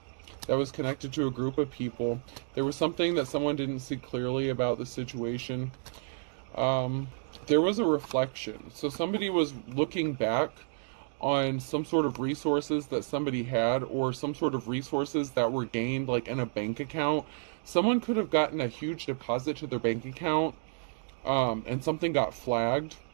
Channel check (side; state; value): left; silent; digital silence